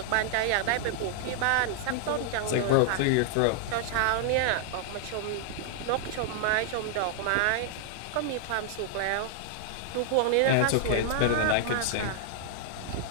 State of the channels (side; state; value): both; different; correlation -0.01